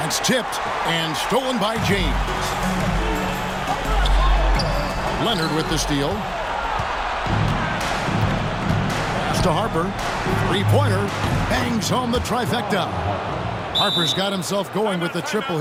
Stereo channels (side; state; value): both; identical; correlation 1.00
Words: It's tipped and stolen by James. Leonard with the steal. Pass to Harper. 3-pointer. Bangs home the trifecta. Harper's got himself going with the triple,